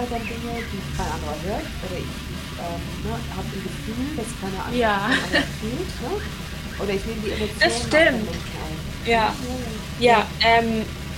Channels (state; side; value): identical; both; correlation 1.00